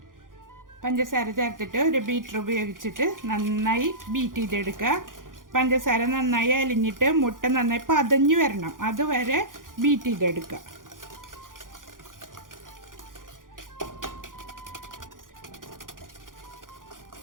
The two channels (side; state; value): left; late; 0.90 ms